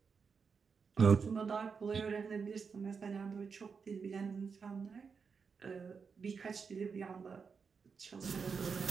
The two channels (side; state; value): left; quieter; 5.6 dB